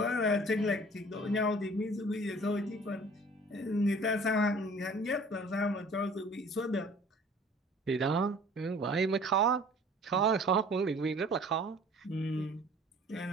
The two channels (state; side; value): normal; both; correlation 0.49